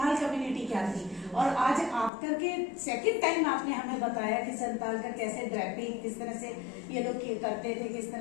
कम्युनिटी क्या थी, और आज आप करके सेकंड टाइम आपने हमें बताया कि संथाल का कैसे ड्रेपिंग किस तरह से ये लोग करते थे, किस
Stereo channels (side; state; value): right; drops out; at 2.1 s